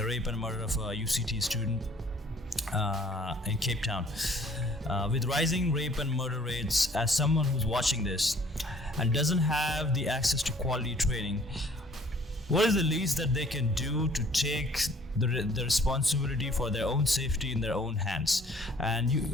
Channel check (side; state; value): both; normal; correlation 0.56